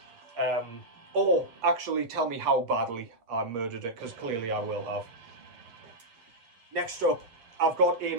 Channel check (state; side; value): late; left; 8.6 ms